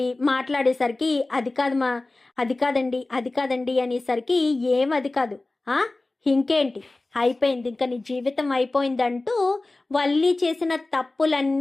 మాట్లాడేసరికి అది కాదండి అనేసరికి ఏం అది కాదు, ఇంకేంటి అయిపోయింది, ఇంకా నీ జీవితం అయిపోయిందంటూ వల్లి చేసిన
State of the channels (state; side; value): quieter; right; 3.0 dB